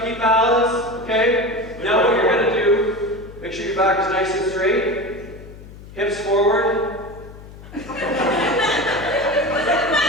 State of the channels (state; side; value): noise; left; hum, 17 dB below the sound